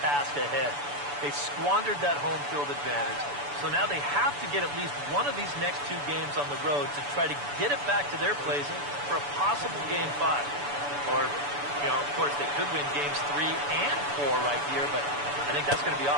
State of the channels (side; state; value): left; late; 6.9 ms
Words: ahead. They squandered that home field advantage. So now they have to get at least one of these next two games on the road to try to get it back to their place for a possible Game 5. Or, you know, of course, they could win Games 3 and 4 right here, but I think that's going to be